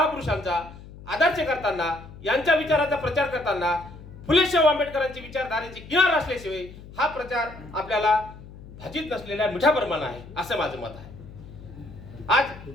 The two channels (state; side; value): noise; left; hum, 17 dB below the sound